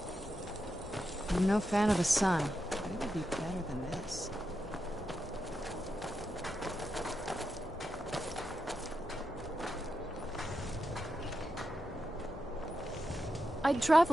I'm no fan of the sun, but it would be better than this. I'd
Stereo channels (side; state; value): both; normal; correlation 0.87